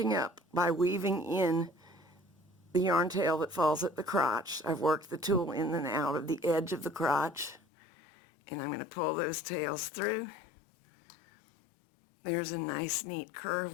up by weaving in the yarn tail that falls at the crotch. I've worked the tulle in and out of the edge of the crotch, and I'm going to pull those tails through. There's a nice neat curve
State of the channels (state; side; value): drops out; right; at 7.6 s